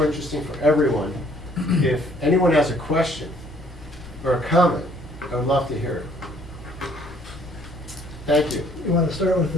interesting for everyone. If anyone has a question or a comment, I would love to hear it. Thank you. You want to start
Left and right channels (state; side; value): normal; both; correlation 0.61